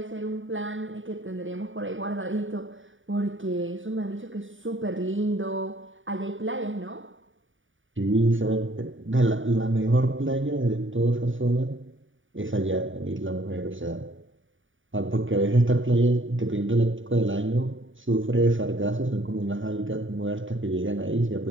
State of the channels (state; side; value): late; left; 0.57 ms